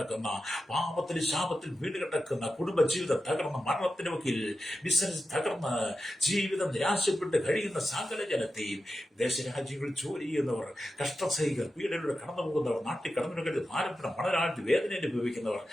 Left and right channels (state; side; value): normal; both; correlation 0.91